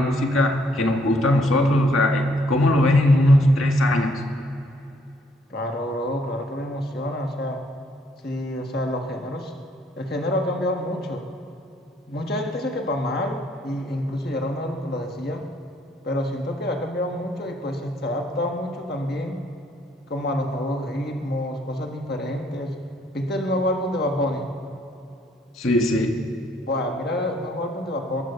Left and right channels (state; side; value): normal; both; correlation 0.67